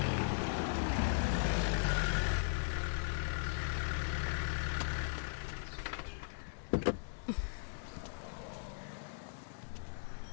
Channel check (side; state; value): right; silent; digital silence